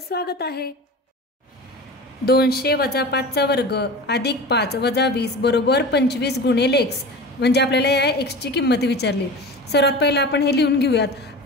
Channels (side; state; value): both; normal; correlation 0.33